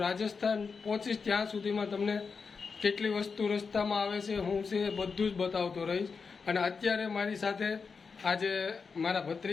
રાજસ્થાન પહોંચીશ ત્યાં સુધીમાં તમને કેટલી વસ્તુ રસ્તામાં આવે છે, હું છે બધું જ બતાવતો રહીશ. અને અત્યારે મારી સાથે આજે મારા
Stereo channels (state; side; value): quieter; right; 5.2 dB